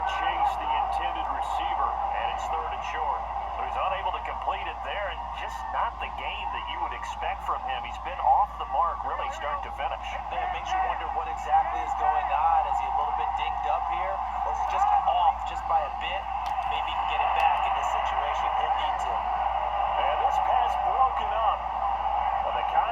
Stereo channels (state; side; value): identical; both; correlation 1.00